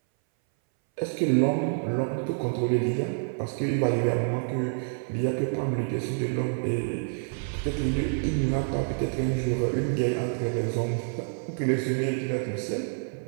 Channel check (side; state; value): left; silent; 60 dB below the other